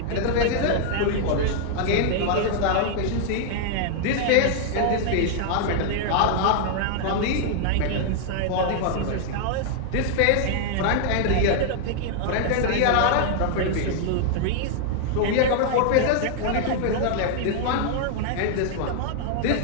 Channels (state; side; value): different; both; correlation -0.01